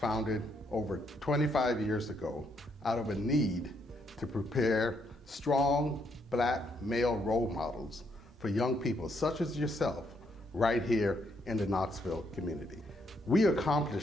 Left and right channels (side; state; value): both; normal; correlation 0.74